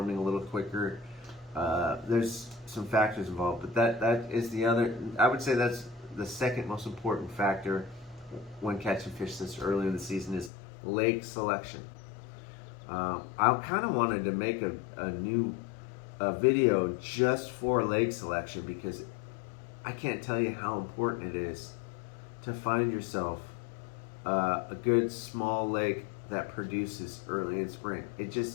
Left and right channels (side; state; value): right; drops out; at 10.5 s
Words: a little quicker. There's some factors involved, but that is the other. I would say that's the second most important factor when catching fish this early in the season is lake selection. I kind of wanted to make a new video just for lake selection because I can't tell you how important it is to find yourself a good small lake that produces early in spring.